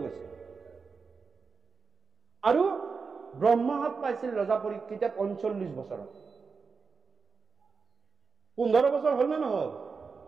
গৈছিল। আৰু ব্ৰহ্মাসাপ পাইছিল ৰজা পৰীক্ষিতে 45 বছৰত। 15 বছৰ হ'ল নে নহল?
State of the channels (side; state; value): left; quieter; 5.1 dB